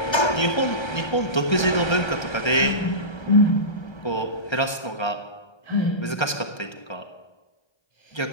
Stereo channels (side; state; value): right; late; 1.3 ms